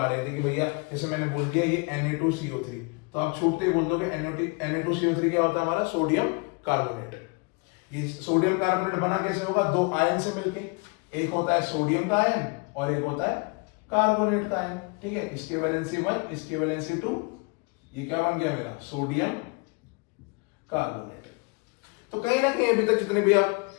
रहे थे कि भैया जैसे मैंने बोल दिया ये Na2CO3, तो आप छूटते ही बोल दोगे Na2CO3 क्या होता है, हमारा सोडियम कार्बोनेट। ये सोडियम कार्बोनेट बना कैसे होगा, दो आयन से मिलके, एक होता है सोडियम का आयन और एक होता है कार्बोनेट का आयन। ठीक है, इसके वैलेंसी 1, इसके वैलेंसी 2, ये क्या बन गया मेरा, सोडियम कार्बोनेट। तो कहीं ना कहीं अभी तक जितने भी आप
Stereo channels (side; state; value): right; quieter; 31.2 dB